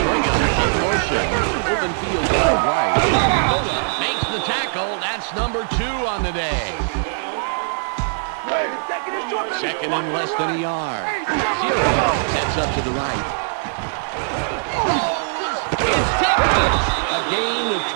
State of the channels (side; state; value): left; silent; 65 dB below the other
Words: motion. Open field wide right. Dakota makes the tackle. That's number 2 on the day. 2nd and less than a yard. 0 sets up to the right. It's tipped. A gain of